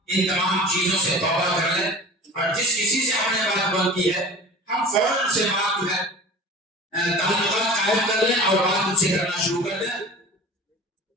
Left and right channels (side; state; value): both; normal; correlation 0.39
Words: ان تمام چیزوں سے توبہ کر لیں اور جس کسی سے ہم نے بات بند کی ہے ہم فوراً سے بات جو ہے تعلقات قائم کر لیں اور بات ان سے کرنا شروع کر دیں.